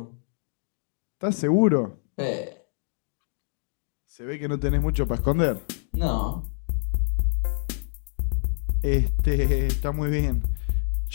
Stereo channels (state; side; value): silent; right; digital silence